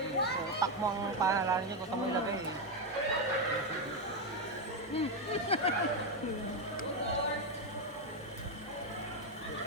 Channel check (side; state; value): both; normal; correlation 0.06